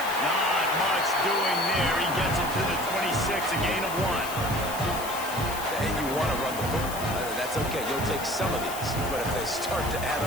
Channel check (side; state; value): left; noise; hiss, 10 dB below the sound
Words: Not much doing there. He gets it to the 26, a gain of 1. And you want to run the football. That's okay. You'll take some of these. But if they start to add